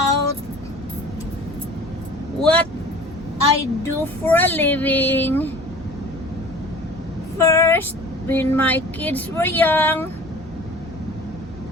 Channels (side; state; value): both; normal; correlation 0.43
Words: what I do for a living. First, when my kids were young,